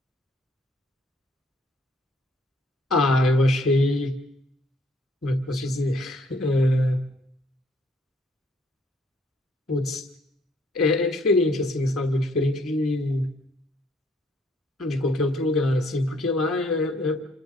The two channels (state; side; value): normal; both; correlation 0.65